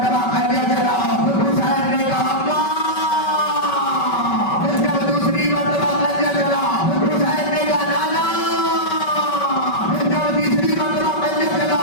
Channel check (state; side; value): late; right; 5.2 ms